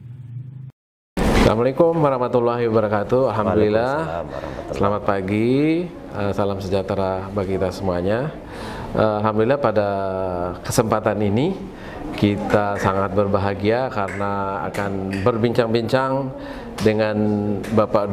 Assalamualaikum warahmatullahi wabarakatuh. Alhamdulillah. Selamat pagi, salam sejahtera bagi kita semuanya. Alhamdulillah pada kesempatan ini kita sangat berbahagia karena akan berbincang-bincang dengan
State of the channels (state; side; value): identical; both; correlation 1.00